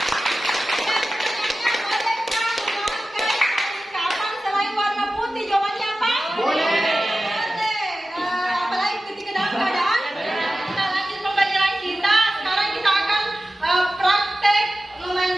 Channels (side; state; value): both; normal; correlation 0.95